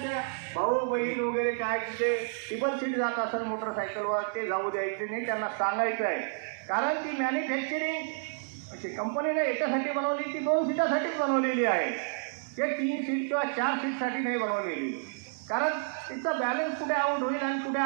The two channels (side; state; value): left; silent; digital silence